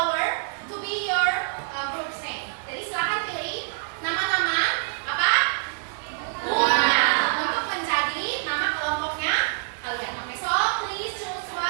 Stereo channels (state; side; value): silent; left; digital silence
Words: to be your group's name. Jadi silakan pilih nama-nama apa? Bunga untuk menjadi nama kelompoknya kalian. Oke, so please choose